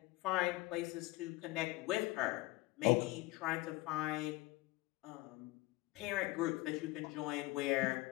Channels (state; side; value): quieter; right; 20.1 dB